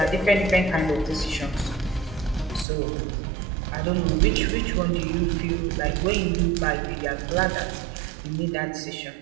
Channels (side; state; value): left; drops out; at 2.7 s